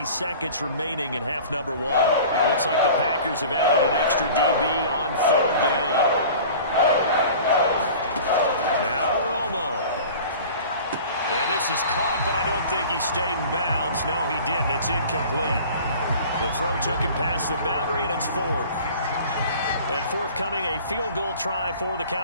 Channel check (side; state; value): both; inverted; correlation -0.42